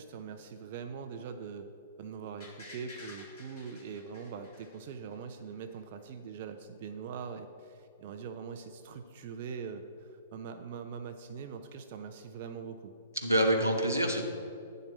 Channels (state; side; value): inverted; both; correlation -0.58